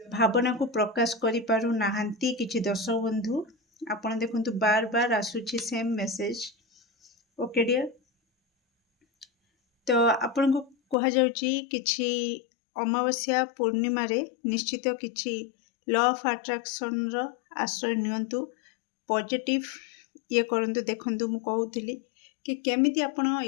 को प्रकाश करि पारु नाहंती किछि दर्शक बंधु आपण देखंतु बार बार आसुछि सेम मेसेज। ओके डियर तो आपण को कहा जाउची किछि अमावस्या पूर्णिमा रे निश्चित किछि लॉ ऑफ अट्रैक्शन रो आश्रय नियंतु पॉजिटिव ये करंतु देखंतु मु कहउथिली कि केमिति आपण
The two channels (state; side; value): drops out; right; at 11.0 s